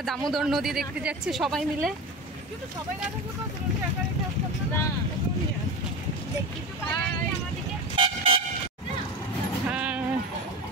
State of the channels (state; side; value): normal; both; correlation 0.27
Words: দামোদর নদী দেখতে যাচ্ছি সবাই মিলে। হ্যাঁ,